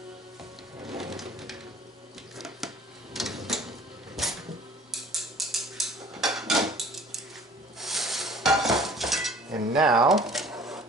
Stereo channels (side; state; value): both; normal; correlation 0.50